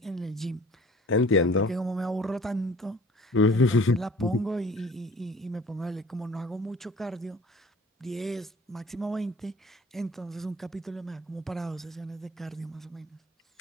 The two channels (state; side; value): normal; both; correlation 0.48